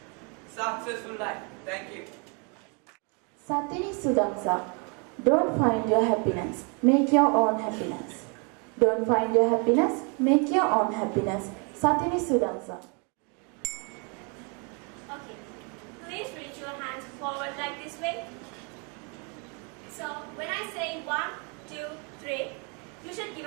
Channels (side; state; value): left; quieter; 34.8 dB